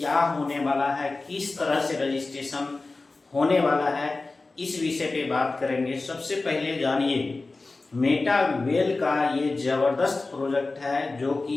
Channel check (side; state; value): right; quieter; 3.5 dB